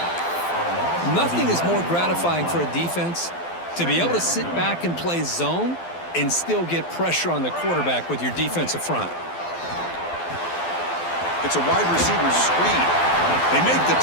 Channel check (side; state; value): right; late; 12 ms